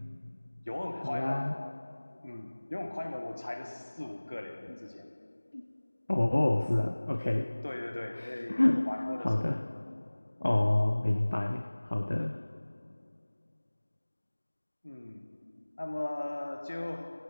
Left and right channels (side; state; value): both; inverted; correlation -1.00